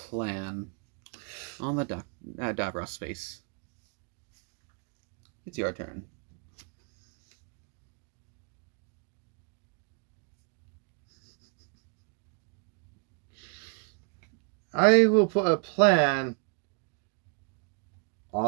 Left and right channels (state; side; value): quieter; left; 40.0 dB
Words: on the Davros space. It's your turn. I will put a plan